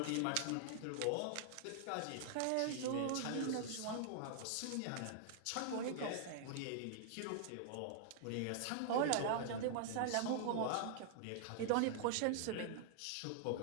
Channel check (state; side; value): different; both; correlation -0.01